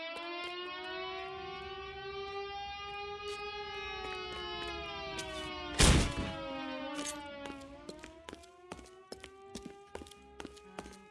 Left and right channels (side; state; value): both; identical; correlation 1.00